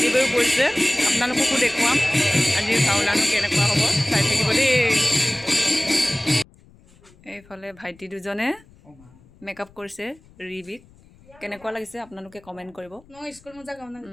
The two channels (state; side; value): noise; left; rumble, 27 dB below the sound